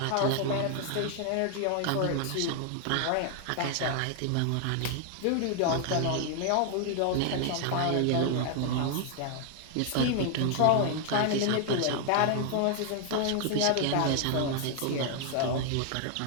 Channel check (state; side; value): different; both; correlation 0.00